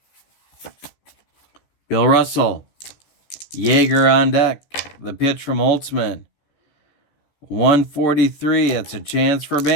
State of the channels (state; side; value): late; right; 14 ms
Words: Bill Russell. Yeager on deck. The pitch from Holtzman. 143. It's a chance for